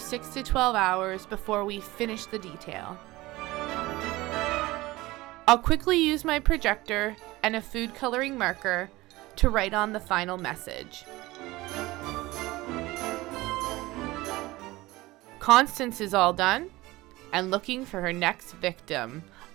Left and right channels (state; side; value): quieter; left; 19.4 dB